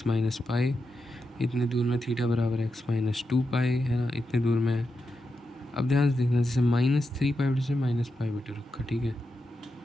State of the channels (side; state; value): both; normal; correlation 0.87